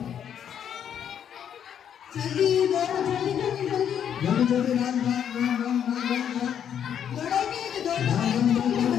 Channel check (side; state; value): right; quieter; 8.9 dB